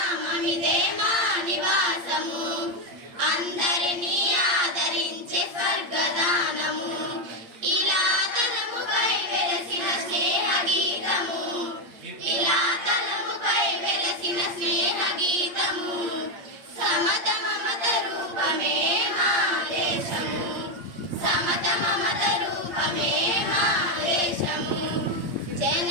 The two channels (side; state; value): left; late; 8.8 ms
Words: మా నివాసము అందరినీ ఆదరించే స్వర్గదానము ఇలా తలముపై వెలసిన స్నేహ గీతము ఇలా తలముపై వెలసిన స్నేహ గీతము సమత మమత రూపమే మా దేశము సమత మమత రూపమే మా దేశము